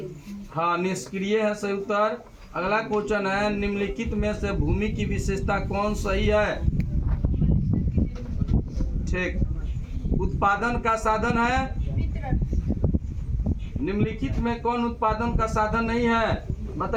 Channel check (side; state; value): both; identical; correlation 1.00